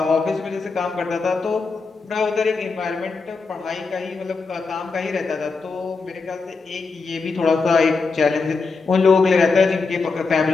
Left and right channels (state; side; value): quieter; right; 4.4 dB